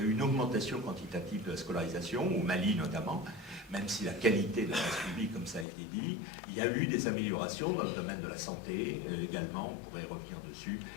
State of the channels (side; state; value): right; drops out; at 5.7 s